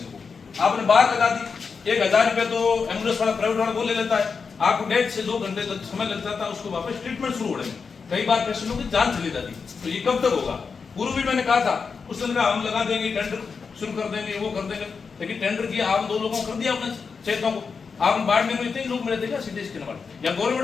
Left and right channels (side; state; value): right; quieter; 5.3 dB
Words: को। आपने बाहर लगा दी, 1000 रुपये तो एम्बुलेंस वाला प्राइवेट वाला वो ले लेता है, आपको 1.5 से 2 घंटे तक समय लग जाता है उसको वापस ट्रीटमेंट शुरू होने में। कई बार पेशेंटों की जान चली जाती, तो ये कब तक होगा? पूर्व भी मैंने कहा था, उस दिन हम लगा देंगे, टेंडर शुरू कर देंगे, वो कर देंगे, लेकिन टेंडर किया आप 2 लोगों को कर दिया अपने चेतों को। आप बाड़मेर में इतने लोग मिले थे क्या सीटी स्कैन वाले या